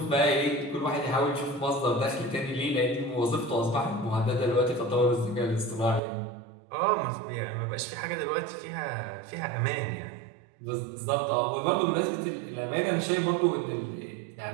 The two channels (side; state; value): left; drops out; at 6.0 s